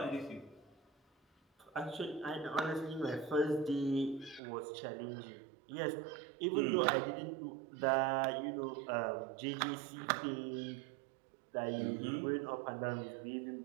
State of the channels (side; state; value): left; drops out; at 4.4 s